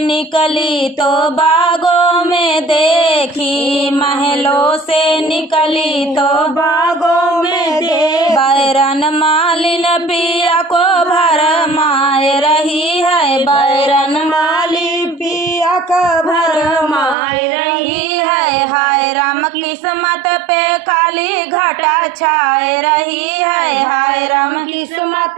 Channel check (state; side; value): drops out; left; at 17.2 s